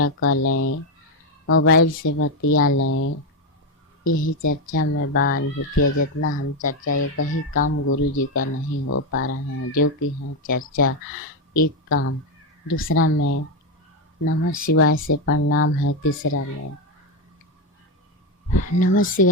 कर लें, मोबाइल से बतिया लें। यही चर्चा में बा अनुभूतिया। जितना हम चर्चा, ये कहीं काम गुरु जी का नहीं हो पा रहा है, जो कि है चर्चा एक काम। दूसरा में नमः शिवाय से प्रणाम है। तीसरा में नमः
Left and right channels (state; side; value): normal; both; correlation 0.07